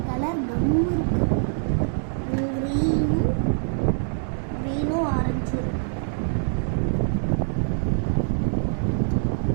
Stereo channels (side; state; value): left; silent; digital silence